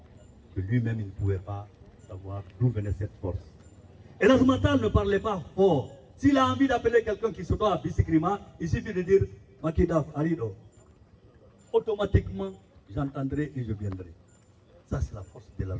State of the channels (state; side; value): identical; both; correlation 1.00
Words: que lui-même il ne pouvait pas savoir d'où venait cette force. Elhadj Matal ne parlait pas fort. S'il a envie d'appeler quelqu'un qui se doit à Bisikrima, il suffit de dire Makidaf Arido. Automatiquement, j'entendrai et je viendrai. Ça, c'est la force